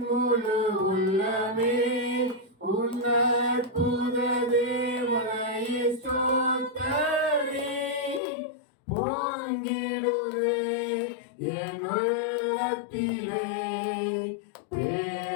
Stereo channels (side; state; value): right; drops out; at 8.2 s